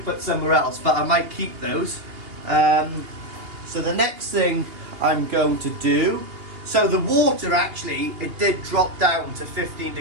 put somewhere else, but I might keep those. So the next thing I'm going to do, so the water actually, it did drop down to 15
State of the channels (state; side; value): late; left; 2.8 ms